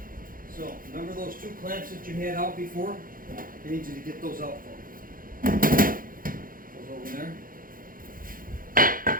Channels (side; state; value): left; late; 0.41 ms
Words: So, remember those two clamps that you had out before? I need you to get those out for me. Those over there.